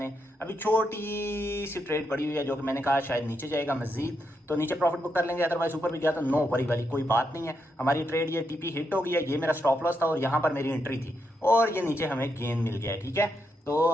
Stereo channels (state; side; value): normal; both; correlation 0.82